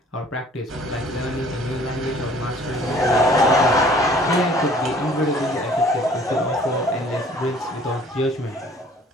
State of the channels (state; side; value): normal; both; correlation 0.54